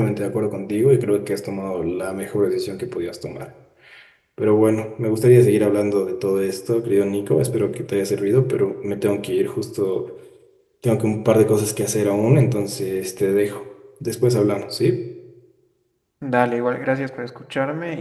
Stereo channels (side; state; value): both; identical; correlation 1.00